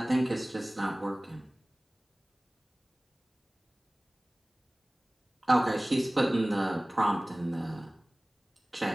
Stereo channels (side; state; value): both; normal; correlation 0.98